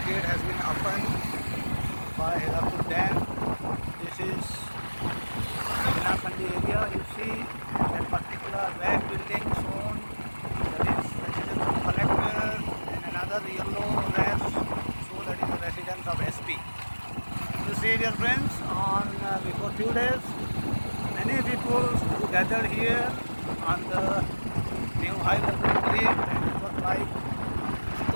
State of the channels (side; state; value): both; inverted; correlation -1.00